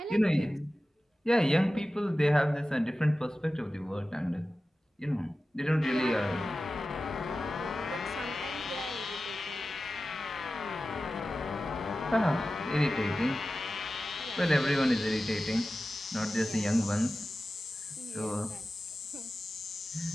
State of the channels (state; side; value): normal; both; correlation 0.95